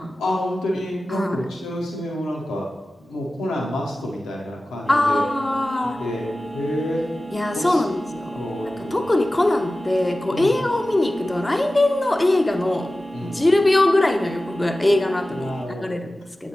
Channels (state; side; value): normal; both; correlation 0.95